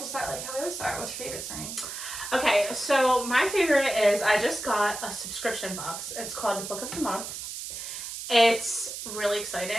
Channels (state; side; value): noise; right; hiss, 7 dB below the sound